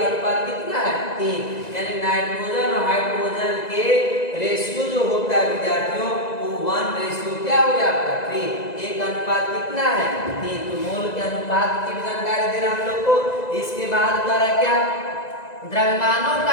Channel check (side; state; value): right; late; 1.9 ms